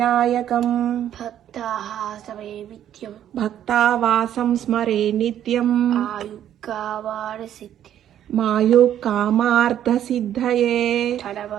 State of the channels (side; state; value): left; quieter; 10.8 dB